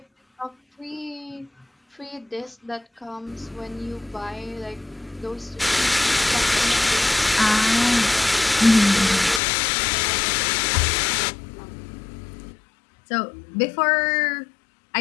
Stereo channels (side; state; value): right; drops out; at 9.4 s